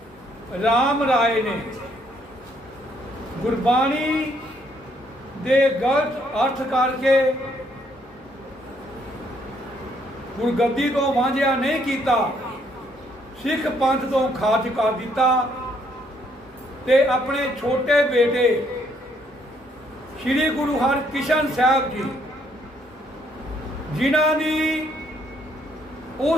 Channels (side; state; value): both; normal; correlation 0.69